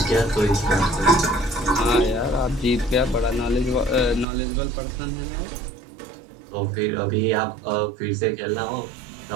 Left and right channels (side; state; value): left; drops out; at 4.2 s